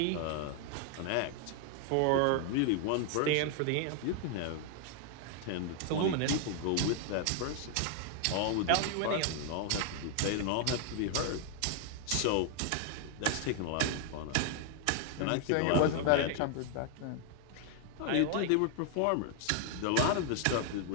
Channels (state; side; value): different; both; correlation 0.00